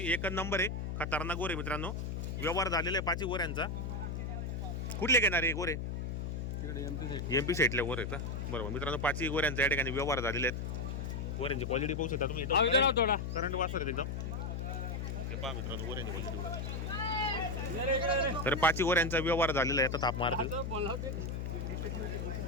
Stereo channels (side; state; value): left; noise; hum, 3 dB below the sound